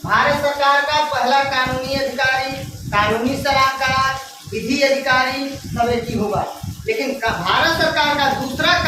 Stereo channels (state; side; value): identical; both; correlation 1.00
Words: भारत सरकार का पहला कानूनी अधिकारी, कानूनी सलाहकार, विधि अधिकारी सब एक ही होगा। लेकिन भारत सरकार का दूसरा